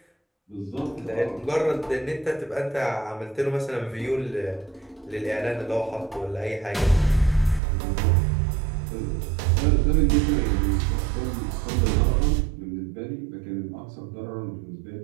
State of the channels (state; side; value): drops out; left; at 7.6 s